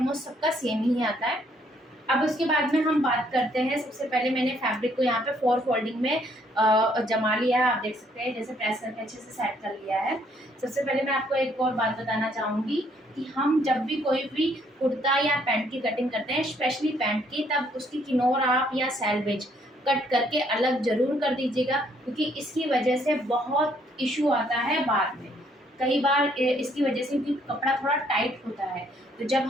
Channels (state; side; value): normal; both; correlation 0.67